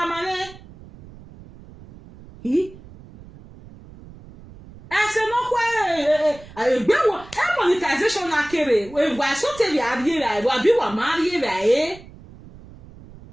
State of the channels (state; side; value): noise; right; rumble, 20 dB below the sound